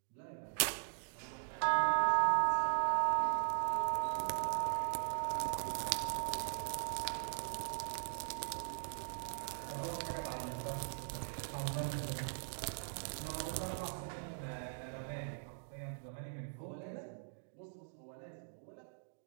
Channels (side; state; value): left; silent; digital silence